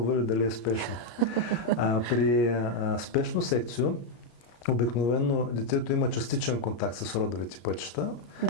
или дали е спешно. При спешно секцио обикновено детето има частичен контакт с родовите пътища.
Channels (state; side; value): late; right; 34 ms